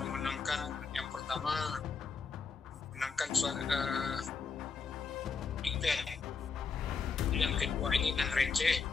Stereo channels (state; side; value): quieter; right; 5.1 dB